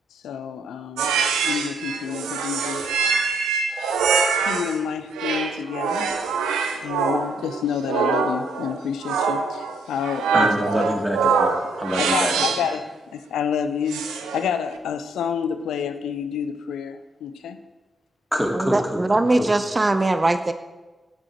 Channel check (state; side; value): normal; both; correlation 0.72